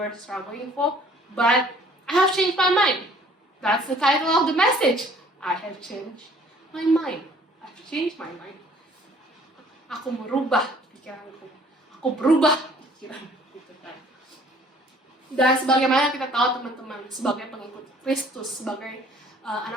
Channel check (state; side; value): normal; both; correlation 0.56